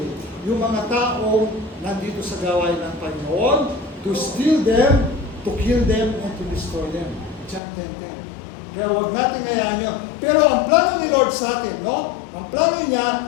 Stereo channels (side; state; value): right; drops out; at 7.6 s